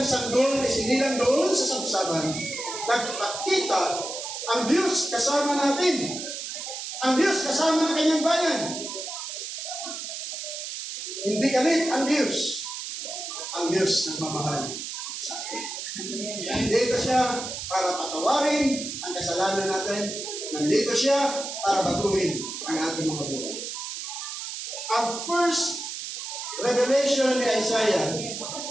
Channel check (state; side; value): noise; right; hiss, 7 dB below the sound